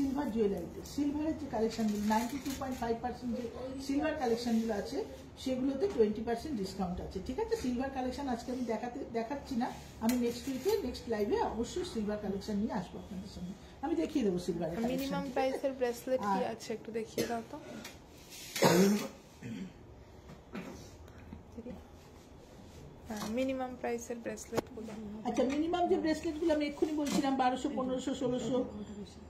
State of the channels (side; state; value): both; identical; correlation 1.00